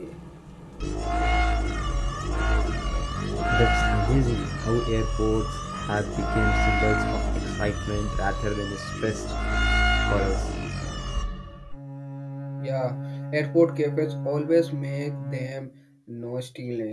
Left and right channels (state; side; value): identical; both; correlation 1.00